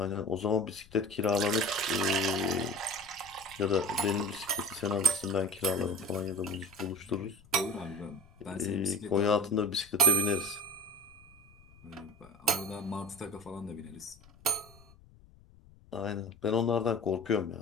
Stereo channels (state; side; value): noise; left; rumble, 25 dB below the sound